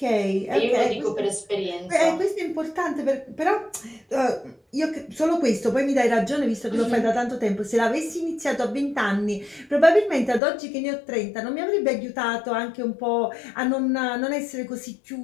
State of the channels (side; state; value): right; drops out; at 10.4 s